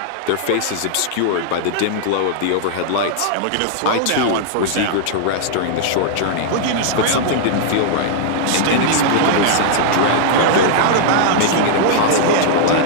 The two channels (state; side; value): different; both; correlation -0.01